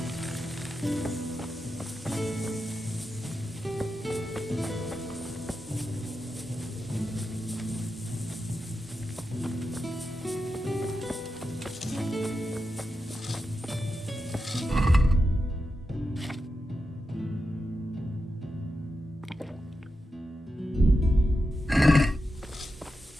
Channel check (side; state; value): both; normal; correlation 0.89